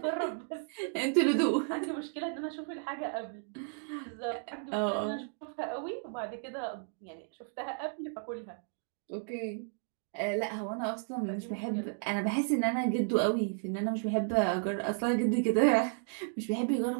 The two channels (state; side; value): silent; left; 56 dB below the other